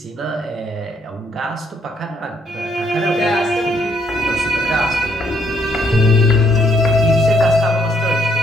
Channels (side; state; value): both; normal; correlation 0.70